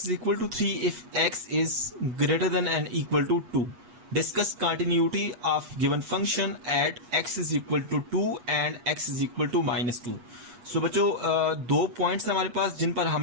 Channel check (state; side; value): late; left; 8.3 ms